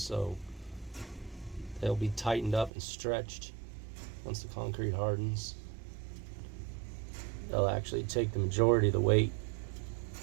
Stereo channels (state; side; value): drops out; left; at 2.7 s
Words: they'll be tightened up and stretched once the concrete hardens. They'll actually take the majority of the weight.